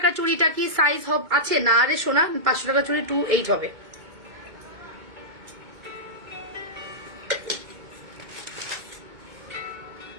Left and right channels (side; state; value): left; late; 2.2 ms